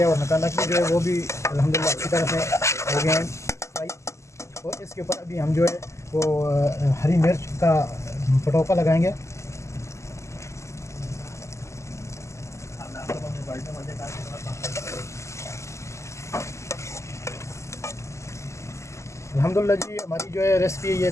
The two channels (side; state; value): right; late; 0.14 ms